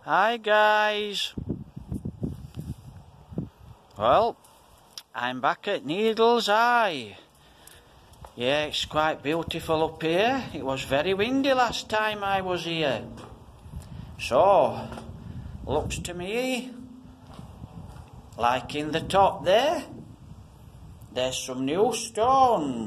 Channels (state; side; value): identical; both; correlation 1.00